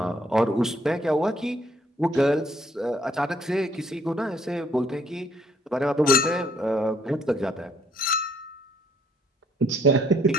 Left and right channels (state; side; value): normal; both; correlation 0.66